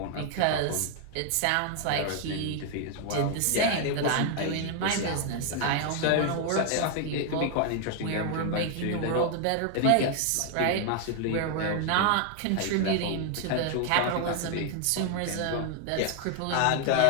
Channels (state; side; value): different; both; correlation 0.00